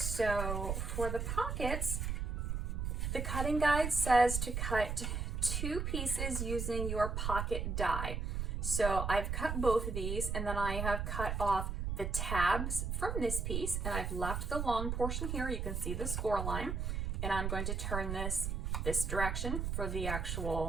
for the pockets, the cutting guide says to cut 2 pieces using your pocket die. So I've cut both of these, and then I have cut off the tabs from this piece, and I've left the long portion here. You can see the score line, and I'm going to turn this direction for the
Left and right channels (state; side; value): noise; right; rumble, 1 dB below the sound